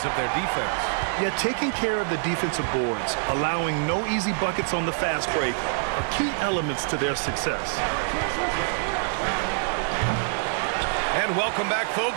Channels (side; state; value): left; silent; digital silence